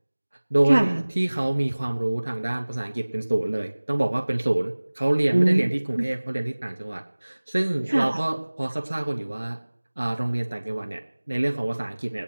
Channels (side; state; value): both; inverted; correlation -1.00